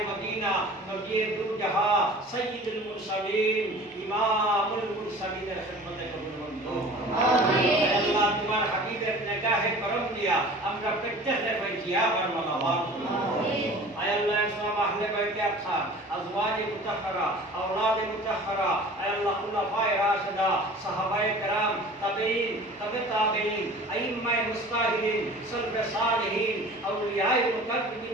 مدینہ نبی دو جہاں سید المرسلین امام المرسلین خدمت قبول منظور آمین اللہ تمہار حبیب نگاہ کرم دیا আমরা প্রত্যেকটা পাইছি আবার মালামাল আমিন আয় আল্লাহ সালাম আহলে বাইতে আতহার আজওয়াজ মুতাহহারা আওলাদ মুতাহহারা আয় আল্লাহ খুলাফায়ে রাশিদা সাহাবায়ে کرام তাবেঈন তাবেঈন আইম্মায়ে মুস্তাহিদিন সালফে সালেহিন আউলিয়ায়ে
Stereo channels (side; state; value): both; normal; correlation 0.43